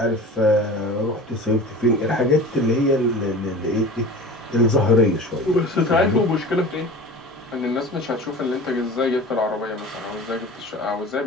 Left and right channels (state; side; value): normal; both; correlation 0.37